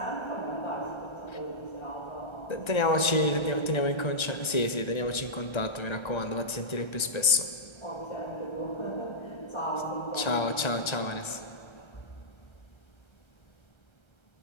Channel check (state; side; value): late; right; 1.3 ms